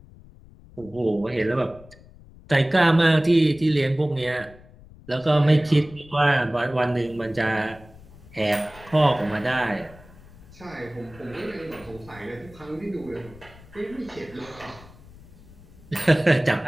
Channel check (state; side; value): noise; left; rumble, 22 dB below the sound